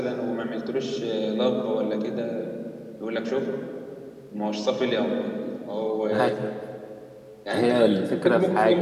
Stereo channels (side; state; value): both; identical; correlation 1.00